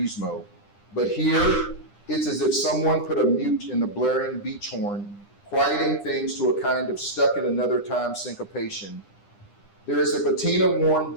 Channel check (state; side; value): late; right; 9.9 ms